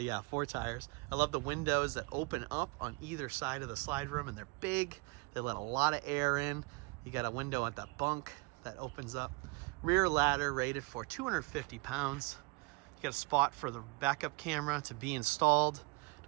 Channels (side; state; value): left; quieter; 28.5 dB